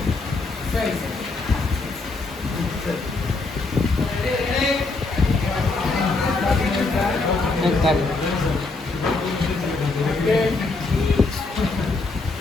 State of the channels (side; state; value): right; quieter; 3.6 dB